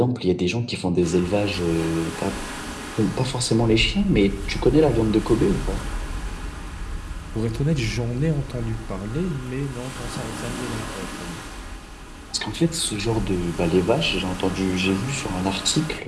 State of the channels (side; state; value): both; identical; correlation 1.00